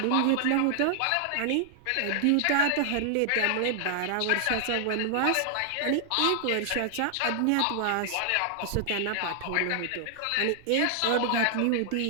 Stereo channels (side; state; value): both; different; correlation 0.00